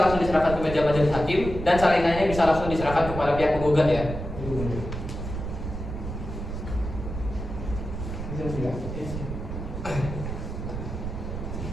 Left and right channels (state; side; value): noise; right; rumble, 6 dB below the sound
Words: langsung diserahkan ke meja majelis hakim dan salinannya bisa langsung diserahkan kepada pihak penggugat ya.